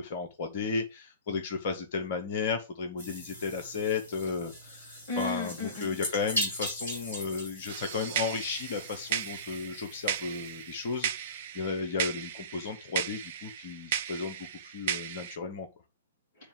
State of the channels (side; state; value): both; inverted; correlation -0.37